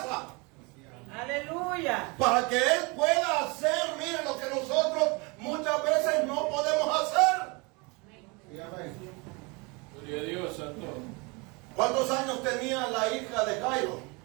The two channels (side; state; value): left; quieter; 28.5 dB